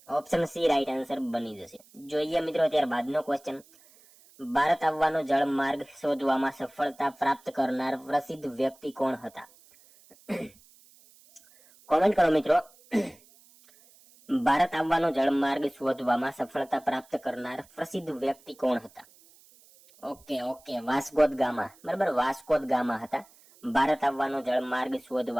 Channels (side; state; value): right; noise; hiss, 27 dB below the sound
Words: ઓપ્શન સી રાઈટ આન્સર બની જશે. જોઈએ મિત્રો ત્યારબાદનો ક્વેશ્ચન. ભારત આવવાનો જળમાર્ગ શોધવામાં સફળતા પ્રાપ્ત કરનાર પ્રસિદ્ધ વ્યક્તિ કોણ હતા? કોમેન્ટ કરો મિત્રો. ભારત આવવાનો જળમાર્ગ શોધવામાં સફળતા પ્રાપ્ત કરનાર પ્રસિદ્ધ વ્યક્તિ કોણ હતા? ઓકે, વાસ્કો દ ગામા, બરાબર, વાસ્કો દ ગામા હતા. ભારત આવવાનો જળમાર્ગ